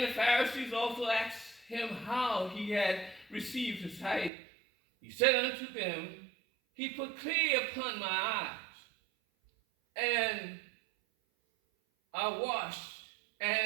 the Pharisees also asked him how he had received his sight. He said unto them, he put clay upon my eyes, and I washed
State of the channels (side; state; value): left; drops out; at 4.3 s